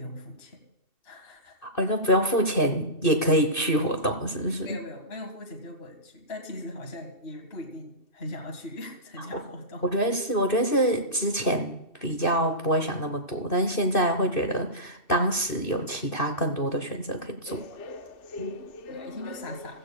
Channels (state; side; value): late; right; 2.6 ms